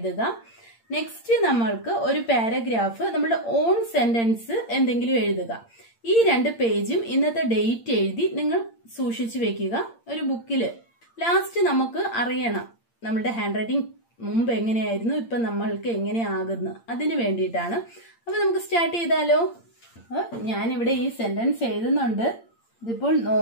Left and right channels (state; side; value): late; right; 8.7 ms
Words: നെക്സ്റ്റ് നമ്മൾക്ക് ഒരു പാരഗ്രാഫ്, നമ്മുടെ ഓൺ സെന്റൻസ് എന്തെങ്കിലും എഴുതുക. ഈ 2 പേജും ഇന്നത്തെ ഡേറ്റ് എഴുതി നിങ്ങൾ സൂക്ഷിച്ചു വെക്കുക ഒരു ബുക്കില്. ലാസ്റ്റ് നമുക്ക് അറിയണം നമ്മുടെ ഹാൻഡ് റൈറ്റിംഗ് മുമ്പ് എങ്ങനെയായിരുന്നു, ഇപ്പൊ നമ്മൾക്ക് എങ്ങനെയാകുന്നു, അതിന് വേണ്ടിയിട്ടാണ്. അപ്പൊ നമുക്ക് സ്റ്റാർട്ട് ചെയ്താലോ. ഞാനിവിടെ ഈ സെന്റൻസ് എഴുതുന്നുണ്ട്. ഇതിപ്പോൾ